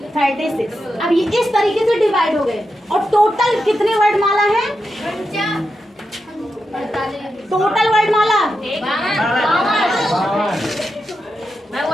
36। अब ये इस तरीके से डिवाइड हो गए। और टोटल कितने वर्णमाला है, टोटल वर्णमाला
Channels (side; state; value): both; normal; correlation 0.87